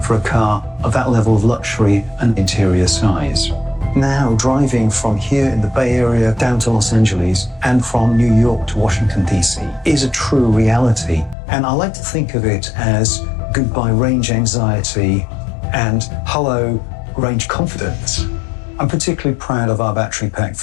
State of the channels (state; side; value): drops out; right; at 11.4 s